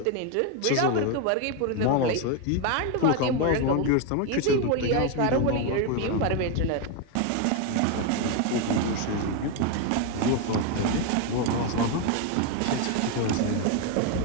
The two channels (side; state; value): both; different; correlation 0.02